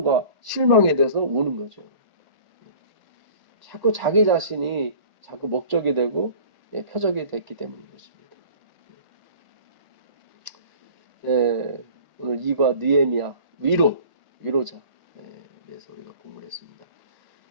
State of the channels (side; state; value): left; late; 1.4 ms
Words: 실망에 대해서 우는 거죠. 자꾸 자기 자신이 자꾸 목적이 되고 표적이 됐기 때문인 것입니다. 오늘 이과 느헤미야 위로자 그래서 우리가 공부를 했습니다.